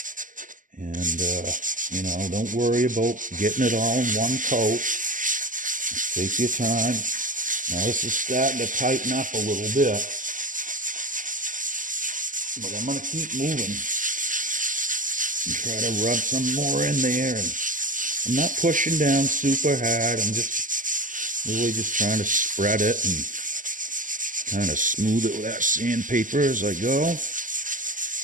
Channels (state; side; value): late; left; 0.38 ms